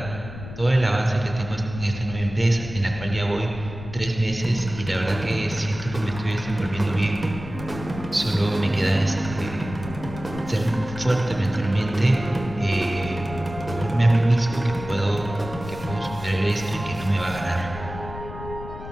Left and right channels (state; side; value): noise; left; rumble, 11 dB below the sound